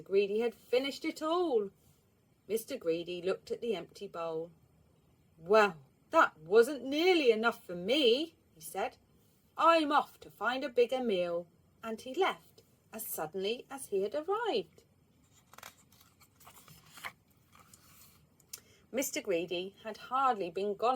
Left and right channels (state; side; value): identical; both; correlation 1.00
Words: Greedy had finished it all. Mr. Greedy looked at the empty bowl. "Well, that wasn't nearly enough for me," he said. "I'm off to find a bigger meal." And he left as suddenly as he had arrived. Mr. Greedy had hardly been